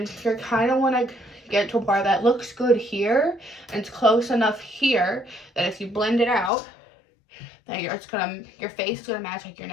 you're kind of want to get to a part that looks good here and it's close enough here that if you blend it out, that your face is gonna match like your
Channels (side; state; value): right; drops out; at 6.5 s